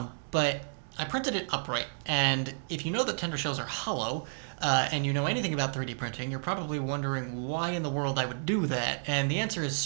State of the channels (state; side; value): silent; left; digital silence